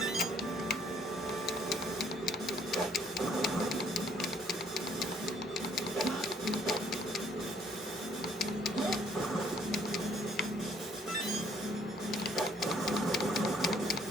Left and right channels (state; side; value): normal; both; correlation 0.64